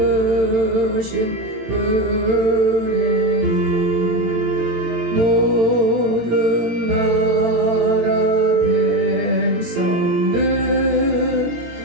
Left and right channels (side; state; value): left; late; 18 ms